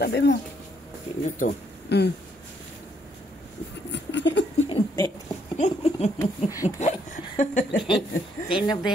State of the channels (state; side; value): normal; both; correlation 0.71